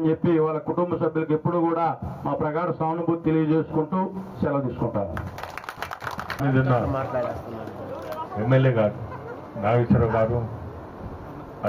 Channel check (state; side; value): identical; both; correlation 1.00